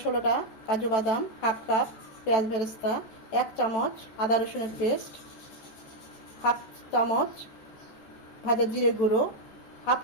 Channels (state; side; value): late; right; 14 ms